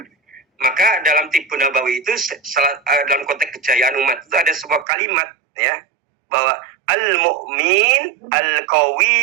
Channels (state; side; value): drops out; left; at 4.9 s